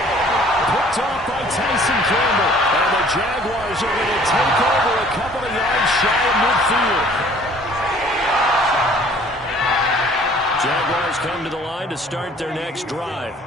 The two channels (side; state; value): both; normal; correlation 0.54